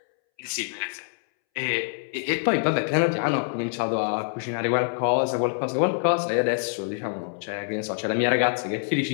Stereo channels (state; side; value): silent; right; 61 dB below the other